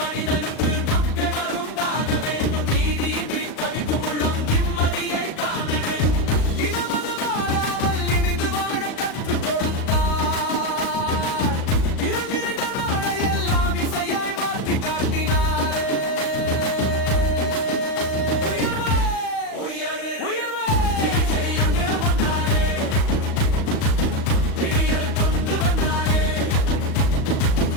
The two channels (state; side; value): late; right; 37 ms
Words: மனிதனுக்கு நம்பிக்கை வருந்தாக வேண்டும், நீதியின்றி தவிக்கும் உள்ளம் நிம்மதியை காண வேண்டும், இனமது வாழாமல் இணைந்து வாழ கற்றுக் கொடுத்தார், இருள் நிறைந்த நாளை எல்லாம் இசையாய் மாற்றி காட்டினாரே. உயர்வே உயர்வே உயர்வே